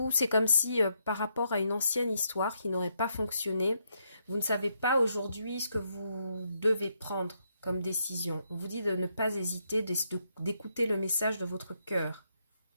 c'est comme si, par rapport à une ancienne histoire qui n'aurait pas fonctionné, vous ne savez pas aujourd'hui ce que vous devez prendre comme décision. On vous dit de ne pas hésiter, d'écouter le message de votre cœur.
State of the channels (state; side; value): inverted; both; correlation -0.77